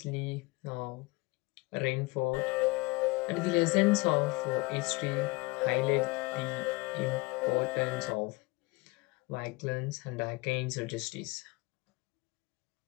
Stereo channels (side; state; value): right; quieter; 24.2 dB